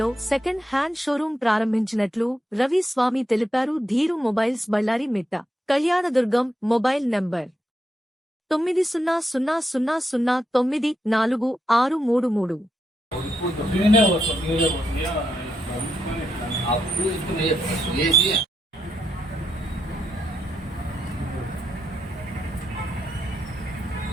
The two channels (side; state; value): both; normal; correlation 0.82